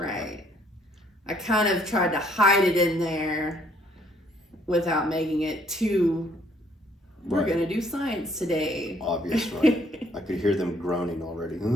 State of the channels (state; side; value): normal; both; correlation 0.64